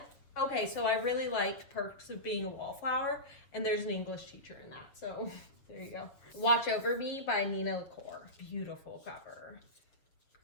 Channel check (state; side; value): late; right; 7.4 ms